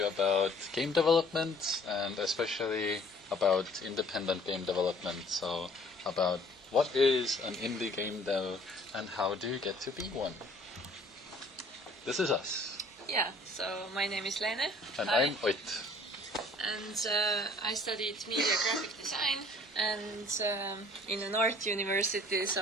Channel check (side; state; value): both; normal; correlation 0.55